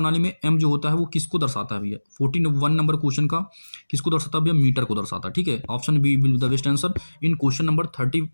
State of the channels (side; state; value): both; inverted; correlation -1.00